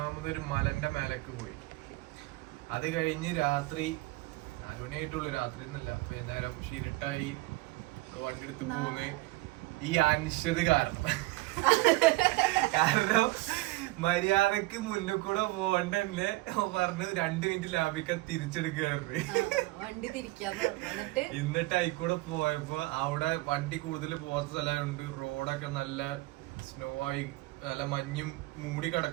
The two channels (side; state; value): left; quieter; 20.7 dB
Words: മലന്റെ മേലേക്ക് പോയി. അത് കഴിഞ്ഞ് രാത്രി 4 മണിയായിട്ടുള്ളൂ. രാത്രി ഒന്നുമില്ല, വൈകുന്നേരം ഷിരിട്ടായി വണ്ടി എടുത്ത് പോകുന്ന ഈ അനിശ്ചിത കാരണം മര്യാദക്ക് മുന്നിൽ കൂടെ പോകണ്ടല്ലേ പറഞ്ഞ് 2 മിനിറ്റ് ലാഭിക്കാൻ തിരിച്ചെടുക്കുകയായിരുന്നു. എന്നിട്ട് ആയിക്കൂടെ പോയപ്പോ അവിടെ വണ്ടി കൂടുതൽ പോകാത്ത സ്ഥലമുണ്ട്. റോഡൊക്കെ നല്ല സ്നോ ആയി, നല്ല മഞ്ഞും മൂടി